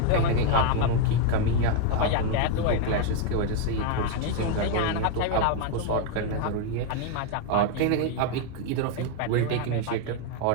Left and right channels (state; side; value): different; both; correlation 0.01